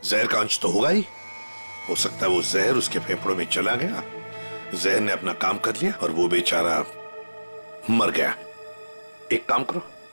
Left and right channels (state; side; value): inverted; both; correlation -1.00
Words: जहर का अंश तो होगा ही। हो सकता है वो जहर उसके फेफड़ों में चला गया, जहर ने अपना काम कर लिया और वो बेचारा मर गया। एक काम करो,